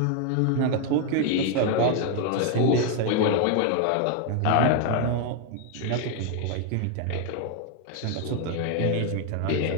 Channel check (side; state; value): both; different; correlation 0.00